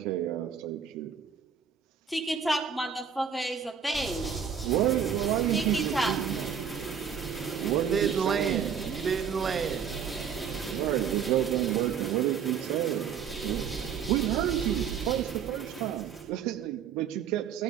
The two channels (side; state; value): left; quieter; 7.4 dB